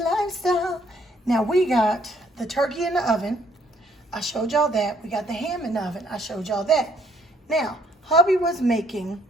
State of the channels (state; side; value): normal; both; correlation 0.66